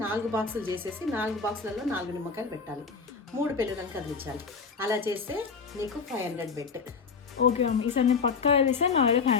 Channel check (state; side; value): quieter; right; 5.3 dB